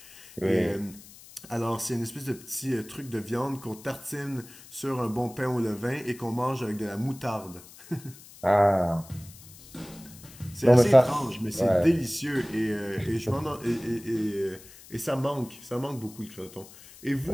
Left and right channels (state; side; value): noise; left; hiss, 20 dB below the sound